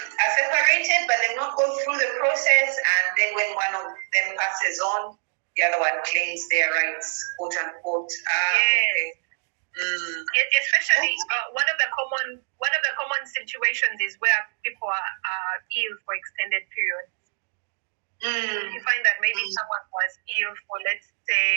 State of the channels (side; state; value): left; silent; digital silence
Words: separated but they've not gone through the process, and then when one of them passes on, the other one claims their rights, quote unquote. Yes. Okay. Especially one of the common situations is where people are ill for extended periods. You find that maybe someone was ill for, let's